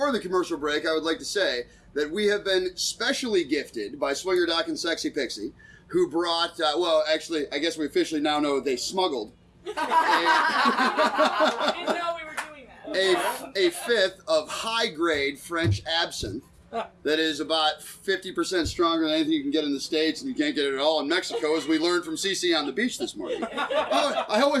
the commercial break, I would like to say that we have been specially gifted by Swingerdoc and Sexxypixie, who brought, actually, I guess we officially now know they smuggled I didn't know we were doing that. a fifth of high-grade French absinthe that is about 50% stronger than anything you can get in the States, and you can't get it at all in Mexico, as we learned from Cece on the beach this morning. Oh, I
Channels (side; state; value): both; identical; correlation 1.00